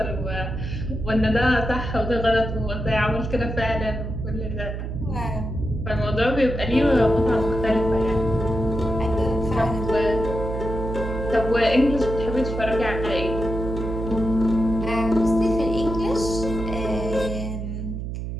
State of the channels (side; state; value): right; noise; hum, 5 dB below the sound